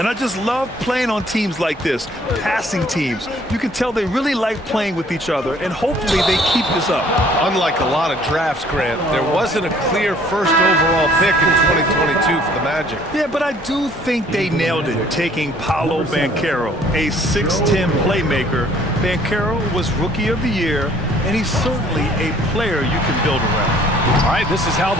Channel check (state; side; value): normal; both; correlation 0.58